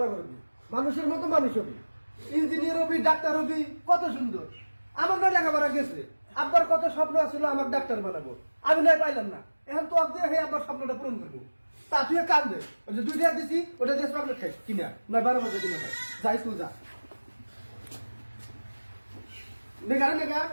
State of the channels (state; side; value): inverted; both; correlation -1.00